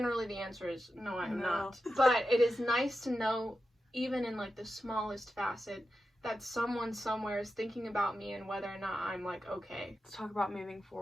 the answer is no, I'm not. But it is nice to know, even in like the smallest facet, that someone somewhere is thinking about me and whether or not I'm like okay. Let's talk about moving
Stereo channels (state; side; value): normal; both; correlation 0.90